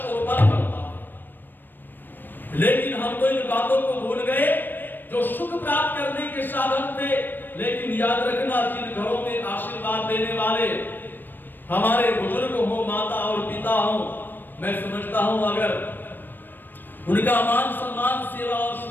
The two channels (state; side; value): late; right; 0.092 ms